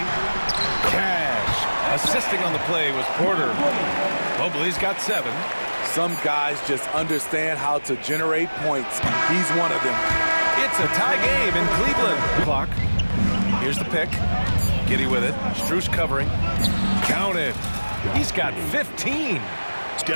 Cash. Assisting on the play was Porter. Mobley's got 7. Some guys just understand how to generate points. He's one of them. It's a tie game in Cleveland. Clock. Here's the pick. Giddey with it. Strus covering. Counted. He's got 15.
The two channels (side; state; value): both; inverted; correlation -1.00